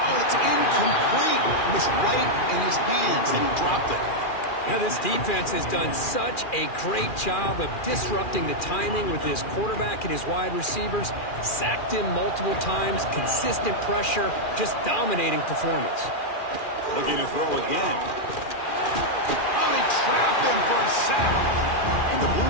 Oh, it's incomplete. It was right in his hands, and he dropped it. Now, this defense has done such a great job of disrupting the timing with his quarterback and his wide receivers. Sacked him multiple times, consistent pressure, just dominating performance. Looking to throw again. Oh, they trap him for a sack. And the Blue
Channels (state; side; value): late; right; 2.4 ms